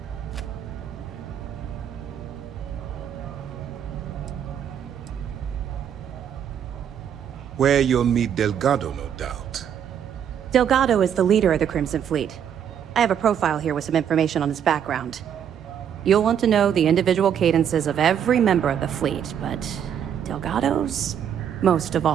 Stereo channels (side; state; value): left; quieter; 8.9 dB